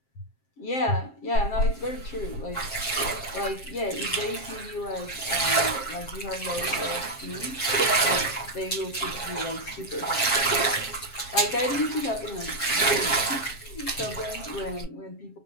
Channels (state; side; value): late; right; 7.5 ms